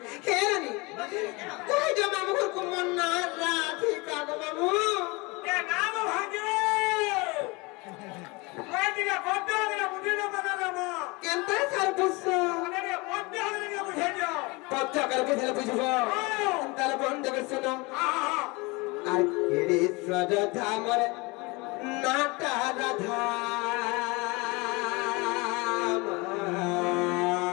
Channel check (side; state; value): right; quieter; 25.9 dB